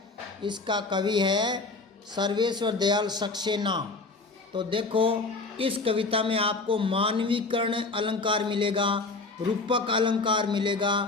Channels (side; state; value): right; quieter; 3.6 dB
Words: इसका कवि है सर्वेश्वर दयाल सक्सेना। तो देखो, इस कविता में आपको मानवीकरण अलंकार मिलेगा, रूपक अलंकार मिलेगा,